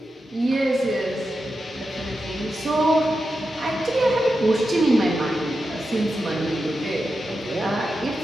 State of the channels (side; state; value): both; normal; correlation 0.89